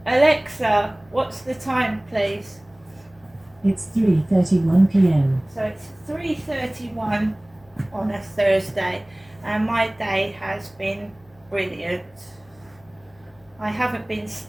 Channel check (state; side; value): noise; left; hum, 29 dB below the sound